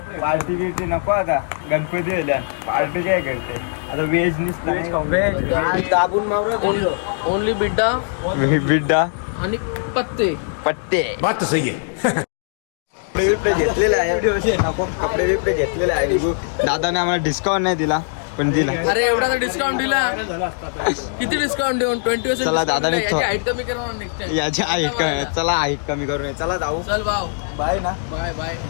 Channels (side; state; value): right; silent; digital silence